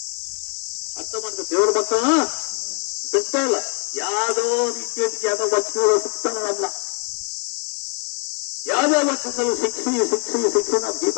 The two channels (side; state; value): right; quieter; 34.8 dB